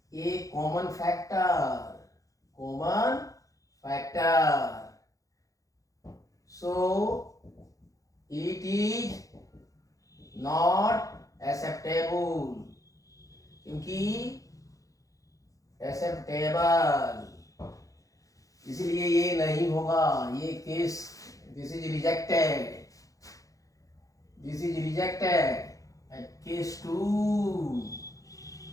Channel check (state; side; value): late; right; 0.16 ms